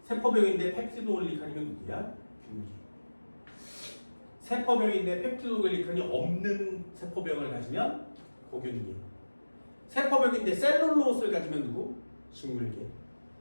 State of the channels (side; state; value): both; inverted; correlation -1.00